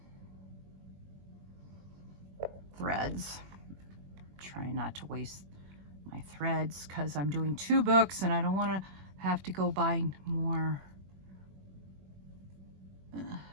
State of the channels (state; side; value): late; left; 21 ms